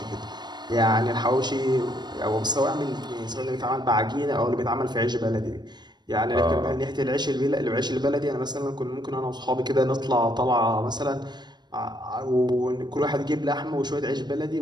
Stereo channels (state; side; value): late; left; 0.21 ms